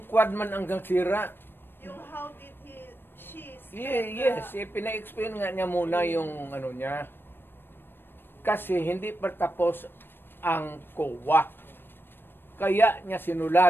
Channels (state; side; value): late; right; 0.099 ms